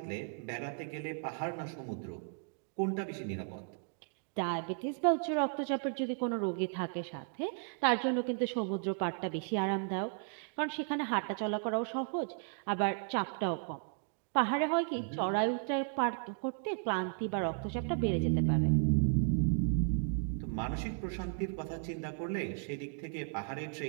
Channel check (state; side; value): silent; left; 54 dB below the other